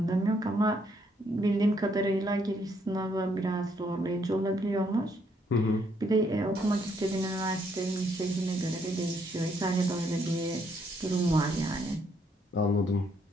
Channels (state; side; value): normal; both; correlation 0.71